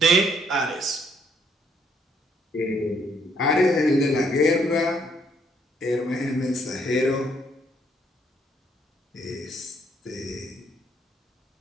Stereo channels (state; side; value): normal; both; correlation 0.69